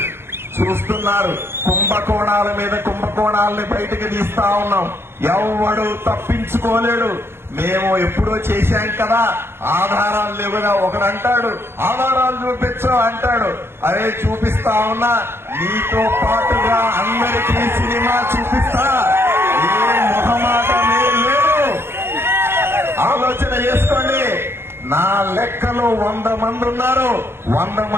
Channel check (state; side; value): late; left; 0.11 ms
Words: చూస్తున్నారు, కుంభకోణాల మీద కుంభకోణాలని బయటకు తీస్తా ఉన్నాం. ఎవడు తప్పించుకోలేడు. మేము ఎప్పుడో చేశాం కదా, ఆధారాలు లేవు కదా. ఒకడు అంటాడు ఆధారాలు చూపించు అంటాడు. అరే చూపిస్తా ఉన్నా, నీతో పాటుగా అందరికీ సినిమా చూపిస్తా. ఏ మొహమాటమే లేదు, ఆలోచన చేసుకోండి. నా లెక్కలో 100 మంది ఉన్నారు. 100